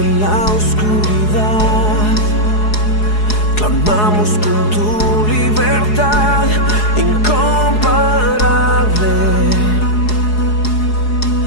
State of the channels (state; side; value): late; right; 4.7 ms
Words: la oscuridad, clamamos con tu libertad incomparable.